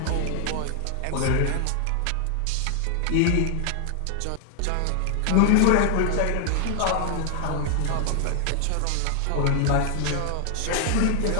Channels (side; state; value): both; different; correlation 0.00